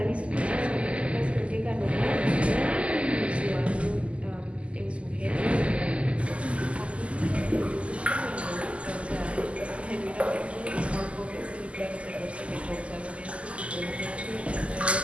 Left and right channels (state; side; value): late; left; 0.058 ms